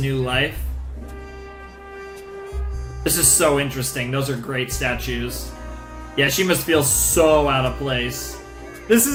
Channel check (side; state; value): both; identical; correlation 1.00